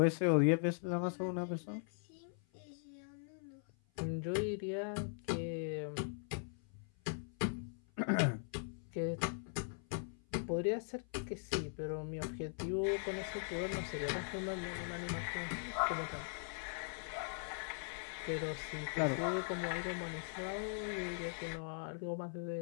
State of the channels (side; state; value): right; silent; 51 dB below the other